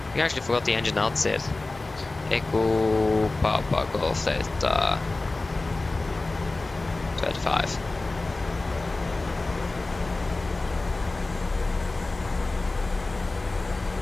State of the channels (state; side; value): quieter; right; 3.2 dB